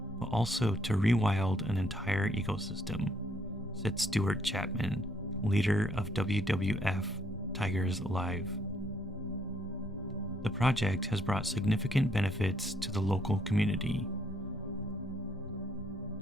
but also to rewild an entire ecosystem, said Stuart Chapman, leader of WWF Tigers Alive. The project has brought significant benefits to the local community.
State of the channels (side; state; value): both; normal; correlation 0.70